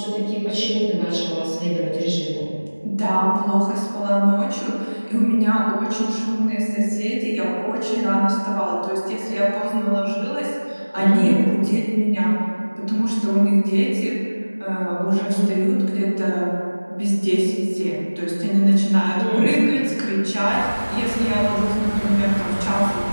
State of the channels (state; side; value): inverted; both; correlation -1.00